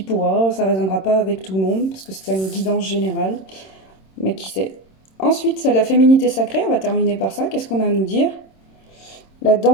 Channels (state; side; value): late; right; 26 ms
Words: pourra, ça résonnera pas avec tout le monde, parce que c'est une guidance générale. Mais qui sait. Ensuite, c'est la féminité sacrée, on va terminer par ça. Qu'est-ce qu'on a à nous dire? La